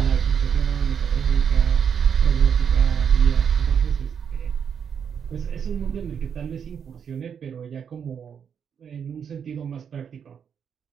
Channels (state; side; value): quieter; left; 7.5 dB